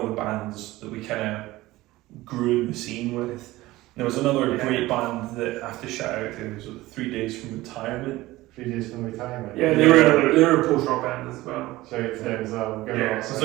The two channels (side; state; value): left; quieter; 18.1 dB